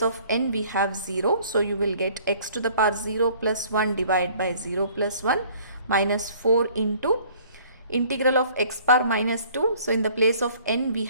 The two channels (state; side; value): inverted; both; correlation -0.55